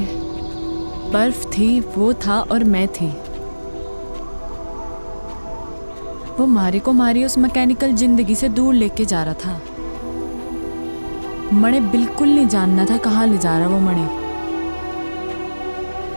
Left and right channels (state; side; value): inverted; both; correlation -1.00